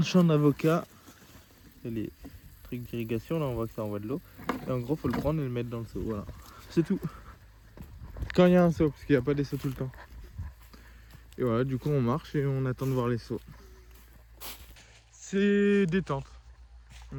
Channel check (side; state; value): both; identical; correlation 1.00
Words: champ d'avocats, il y a les trucs d'irrigation. Là, on voit que ça envoie de l'eau. Et en gros, faut le prendre et le mettre dans le seau. Voilà. C'est tout. Quand il y a un seau, parce qu'il n'y a pas des seaux tout le temps. Et voilà, du coup, on marche et on attend de voir les seaux. C'est détente.